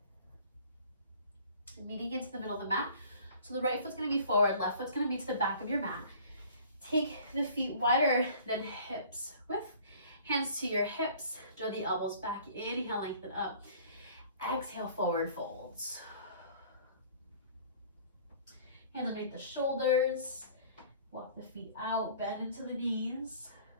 And meeting into the middle of the mat. So the right foot's gonna be forward, left foot's gonna be to the back of your mat. Take the feet wider than hips width. Hands to your hips, draw the elbows back. Inhale, lengthen up. Exhale, forward folds. Hands underneath the shoulders. Walk the feet out, bend into the knees.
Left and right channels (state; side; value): inverted; both; correlation -0.50